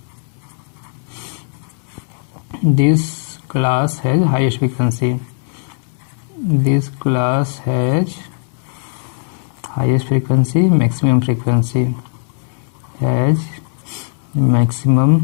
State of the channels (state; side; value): silent; right; 60 dB below the other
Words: this class has highest frequency, this class has highest frequency, maximum frequency, has